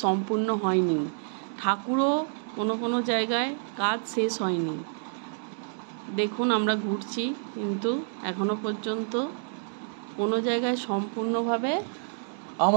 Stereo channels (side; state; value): left; silent; digital silence